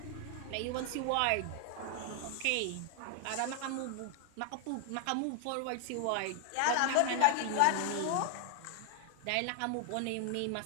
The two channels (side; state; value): both; different; correlation 0.00